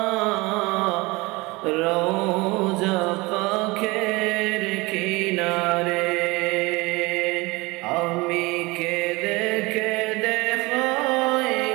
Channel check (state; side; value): quieter; left; 23.5 dB